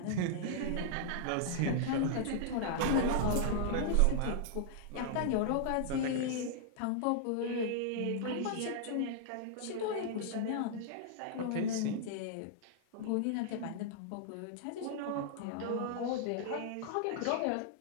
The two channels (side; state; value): both; different; correlation -0.01